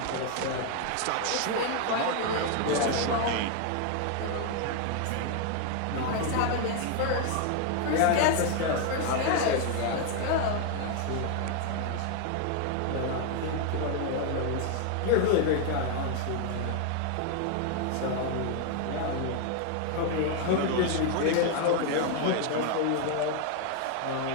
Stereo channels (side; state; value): both; different; correlation 0.00